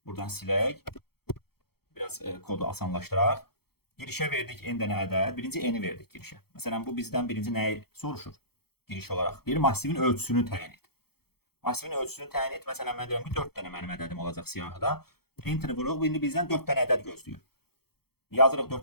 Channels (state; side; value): late; right; 0.96 ms